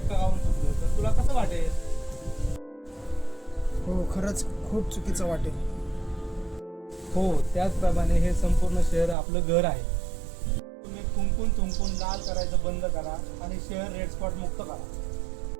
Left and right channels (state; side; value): drops out; left; at 9.2 s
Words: खाऊन थुकलं तर तुला कसं वाटेल? हो, खरंच खूप चुकीचं वाटेल. हो, त्याचप्रमाणे हे संपूर्ण शहर आपलं घर आहे. तुम्ही थुंकून लाल करायचं बंद करा आणि शहर रेड स्पॉट मुक्त करा.